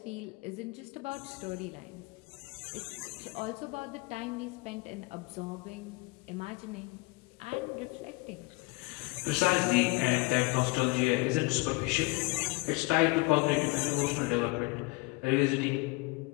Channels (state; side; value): quieter; right; 25.4 dB